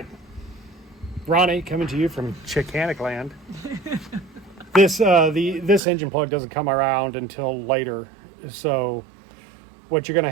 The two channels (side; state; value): left; drops out; at 5.8 s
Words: Ronnie, coming to you from Chickanic land. This engine plug doesn't come around until later. So what you're going to